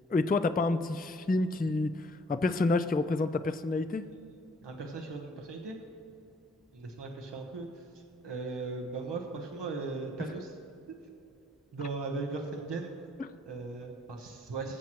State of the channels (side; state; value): both; normal; correlation 0.64